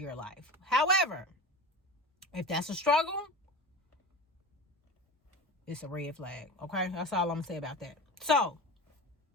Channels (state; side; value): normal; both; correlation 0.31